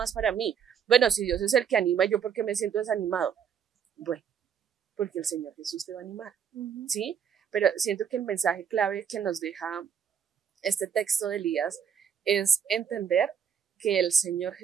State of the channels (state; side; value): quieter; left; 7.6 dB